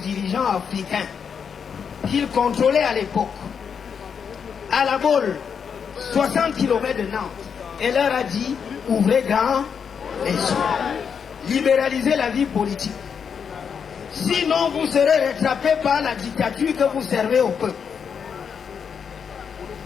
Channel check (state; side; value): quieter; right; 6.8 dB